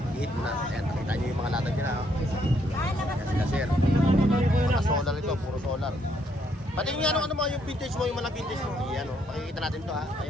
i-hit mo na. Ayan, nakita nyo yung mga latag nila ha. Ayan sila sir. Mga solar ito, puro solar. Pati yung ano mo, yung vintage mo, yung mga vintage mo. Ayan o, pakikita natin to ha.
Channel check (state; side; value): normal; both; correlation 0.72